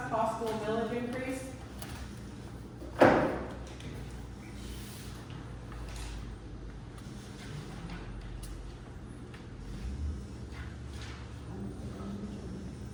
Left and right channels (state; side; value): identical; both; correlation 1.00